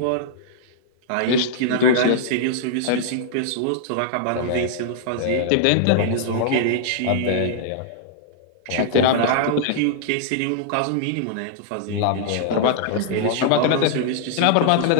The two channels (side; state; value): both; different; correlation -0.01